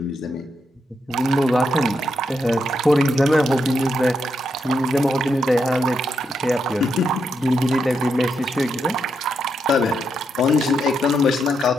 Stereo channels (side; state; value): both; normal; correlation 0.81